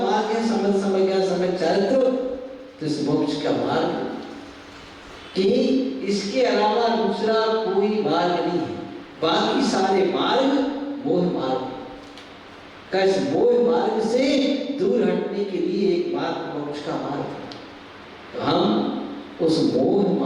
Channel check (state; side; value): identical; both; correlation 1.00